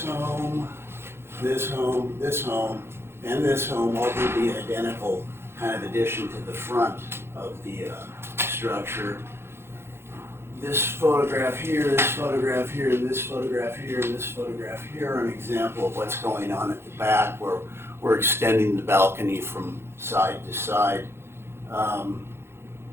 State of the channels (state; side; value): late; left; 0.12 ms